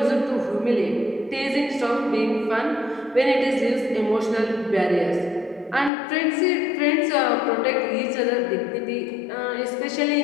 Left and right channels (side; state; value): right; drops out; at 5.9 s